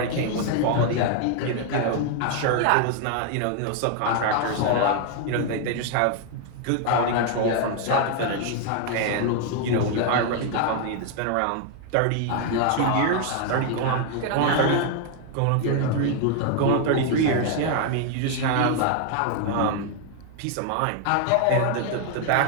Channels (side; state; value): both; different; correlation 0.00